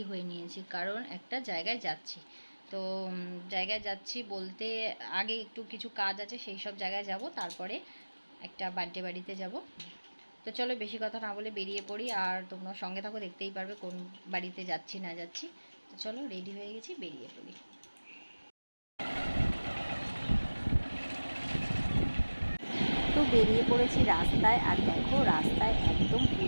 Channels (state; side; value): inverted; both; correlation -1.00